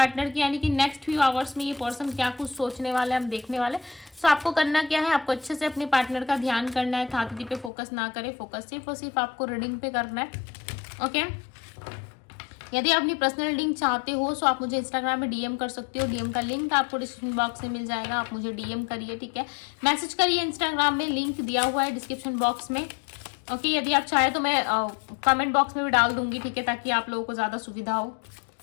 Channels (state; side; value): drops out; right; at 7.7 s